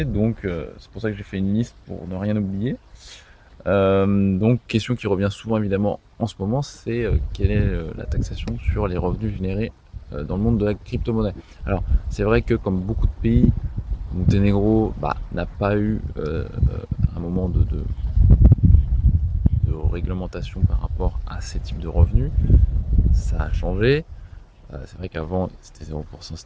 donc c'est pour ça que j'ai fait une liste pour ne rien oublier. Donc, question qui revient souvent évidemment en ce moment, c'est quelle est la taxation sur les revenus générés dans le monde de la crypto-monnaie. Alors, c'est vrai que comme beaucoup de pays, Monténégro n'a pas eu un moment de réglementation par rapport à ces types de revenus. Ça a changé. C'est vrai qu'avant, c'était 0%,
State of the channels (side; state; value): both; identical; correlation 1.00